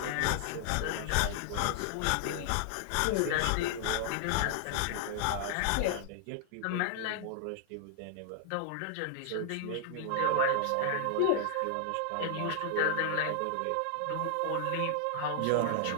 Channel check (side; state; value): both; different; correlation 0.00